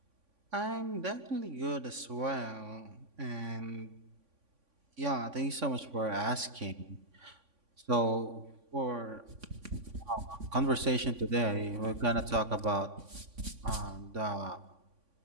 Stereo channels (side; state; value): left; late; 3.5 ms